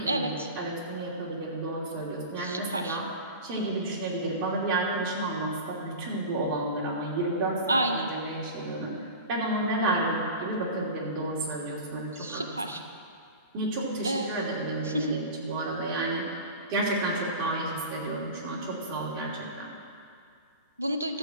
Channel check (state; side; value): inverted; both; correlation -0.32